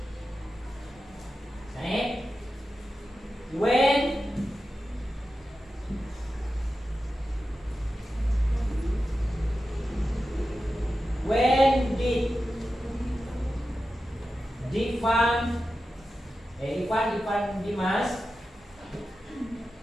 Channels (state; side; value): normal; both; correlation 0.92